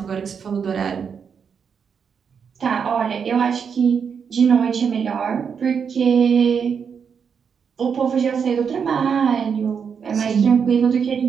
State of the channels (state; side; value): quieter; left; 6.7 dB